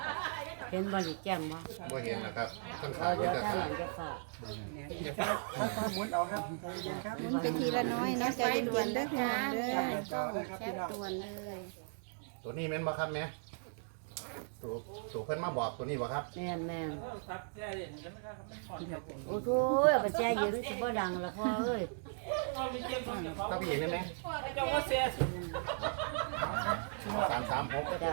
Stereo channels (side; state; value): left; silent; digital silence